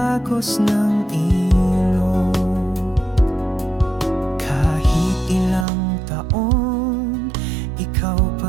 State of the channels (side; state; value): left; drops out; at 5.7 s